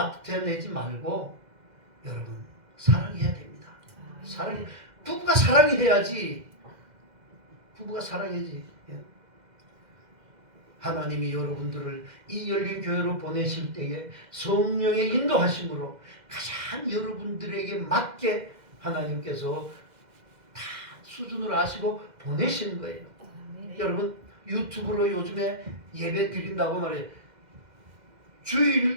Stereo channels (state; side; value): late; left; 2.0 ms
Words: 말고 여러분 사랑해야 됩니다. 사랑 부부가 사랑해야지. 부부가 사랑해야지. 예. 하나님이 여러분들을 이 열린 교회로 보내실 때에 성령의 인도하심으로 가장 여러분들에게 맞게 하나님께서 다 수준을 아시고 보내시는 거예요. 여러분 유튜브로 요즘에 예배 드린다고 말해요.